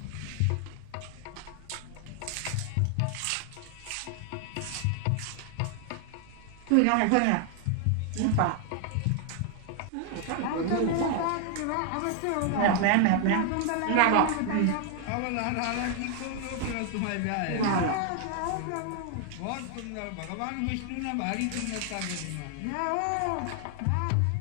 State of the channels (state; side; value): different; both; correlation 0.00